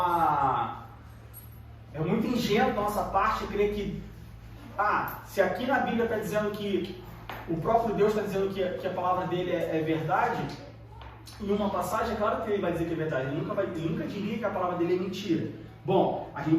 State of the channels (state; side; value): identical; both; correlation 1.00